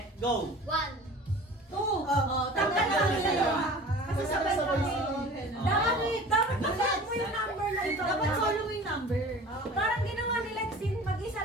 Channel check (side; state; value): both; normal; correlation 0.42